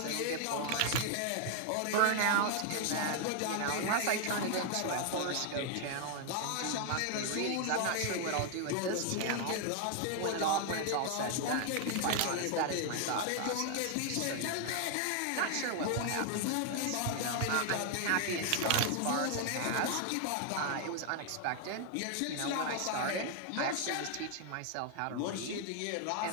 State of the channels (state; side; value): different; both; correlation 0.00